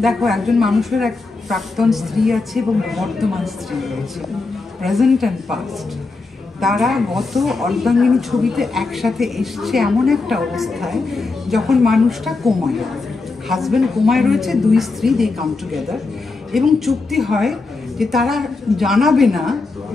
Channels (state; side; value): quieter; right; 3.8 dB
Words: দেখো, একজন মানুষের এক প্রাক্তন স্ত্রী আছে এবং বর্তমান স্ত্রী রয়েছে, প্রেজেন্ট অ্যান্ড পাস্ট। তারা গত অর্ধাঙ্গিনী ছবিতে একসাথে এসছে এমন একটা অবস্থায় যখন মানুষটা কোমায়, হাজব্যান্ড কোমায় রয়েছে, দুই স্ত্রী দে কাম টুগেদার, এবং চুক্তি হয় যে তারা জানাবে না